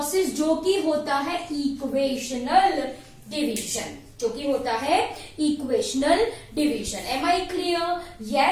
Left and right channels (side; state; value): both; identical; correlation 1.00